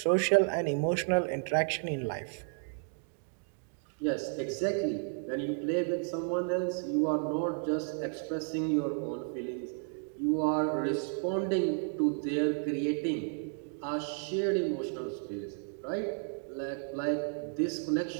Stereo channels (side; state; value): left; silent; 56 dB below the other